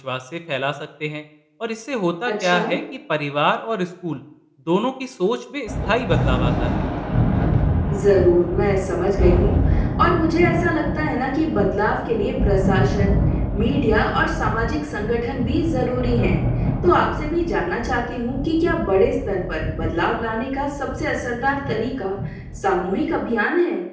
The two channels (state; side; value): identical; both; correlation 1.00